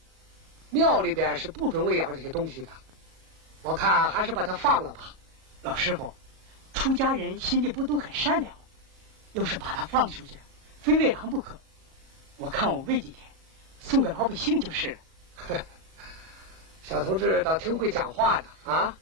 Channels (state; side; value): late; left; 37 ms